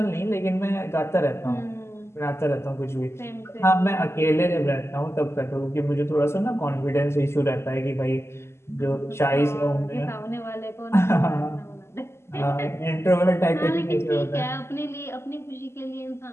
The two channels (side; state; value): right; late; 0.12 ms